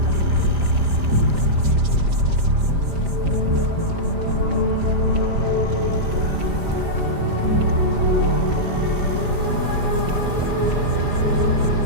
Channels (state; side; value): late; left; 5.0 ms